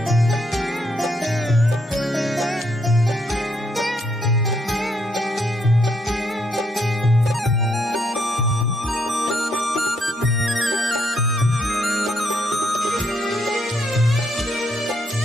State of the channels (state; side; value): normal; both; correlation 0.74